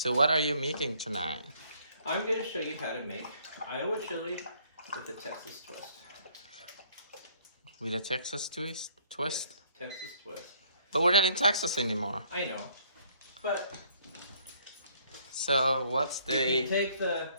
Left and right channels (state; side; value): inverted; both; correlation -0.63